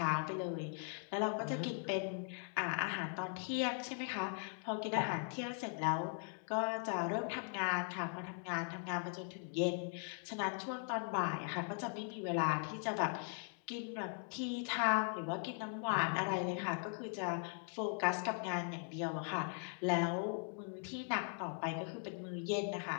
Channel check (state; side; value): silent; right; 51 dB below the other